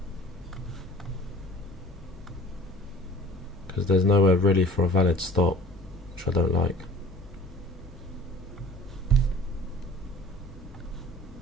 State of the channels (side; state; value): both; normal; correlation 0.45